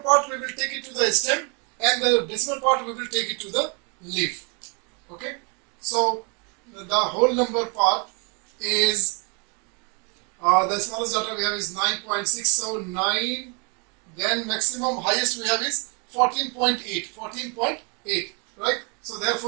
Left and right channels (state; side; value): quieter; left; 34.8 dB